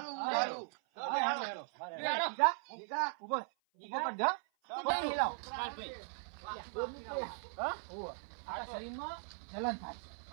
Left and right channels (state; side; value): silent; left; 52 dB below the other